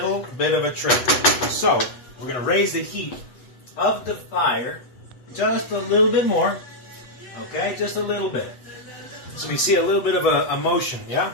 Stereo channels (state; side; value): late; right; 8.0 ms